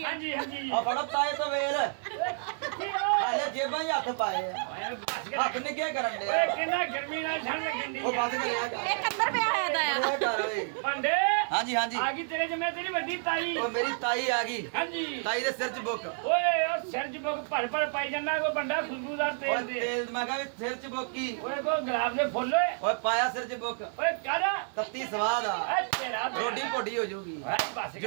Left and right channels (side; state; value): left; silent; 58 dB below the other